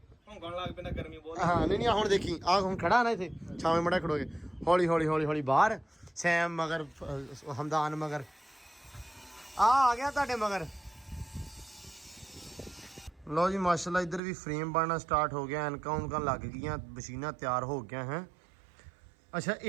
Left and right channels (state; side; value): drops out; left; at 14.2 s